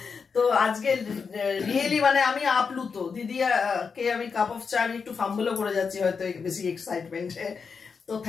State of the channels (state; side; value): quieter; right; 5.6 dB